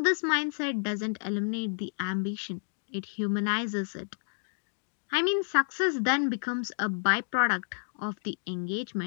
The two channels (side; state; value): right; silent; digital silence